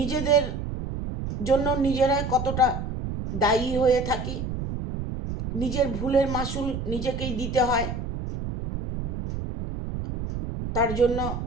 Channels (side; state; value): right; noise; rumble, 5 dB below the sound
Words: জন্য নিজেরাই কতটা দায়ী হয়ে থাকি, নিজের ভুলের মাসুল নিজেকেই দিতে হয়। তার জন্য